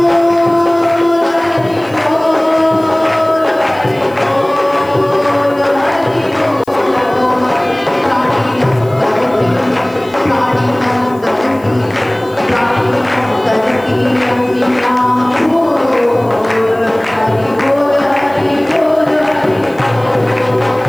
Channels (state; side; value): noise; left; hiss, 27 dB below the sound